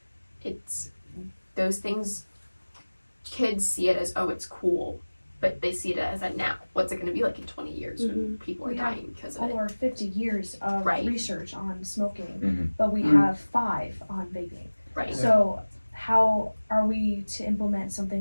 it's those things, kids see it as, oh, it's cool, but they see it as a now. What's it going to be like in 20 years when people are dying because of it? Over 50 years of research on smoking, but we have 5 on vaping. Right. So how are we to implement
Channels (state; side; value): inverted; both; correlation -1.00